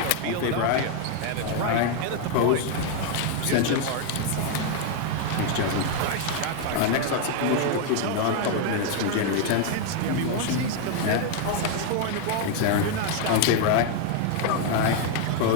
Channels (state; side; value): different; both; correlation 0.00